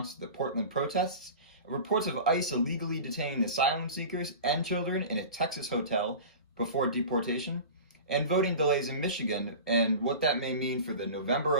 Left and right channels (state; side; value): inverted; both; correlation -0.34